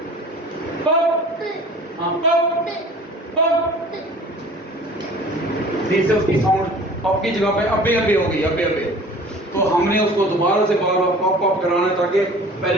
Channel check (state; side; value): normal; both; correlation 0.45